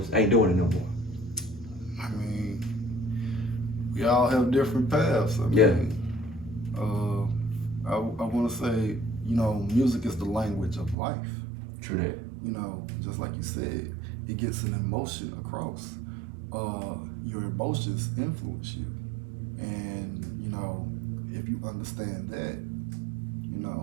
ain't doing it no more. I mean, we all have different paths. I mean, I want to say, you know, music is the language of life. True that. You know, just like you said, it gets an emotion across. Your emotions influence you, and you know, if you understand that, you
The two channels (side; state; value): left; drops out; at 11.0 s